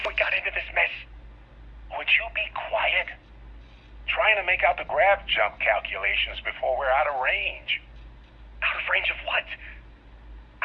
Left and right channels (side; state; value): both; identical; correlation 1.00